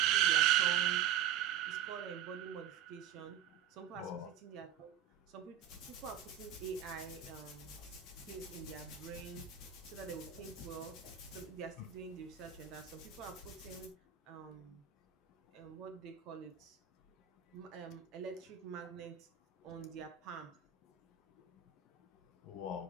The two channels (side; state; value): left; quieter; 9.6 dB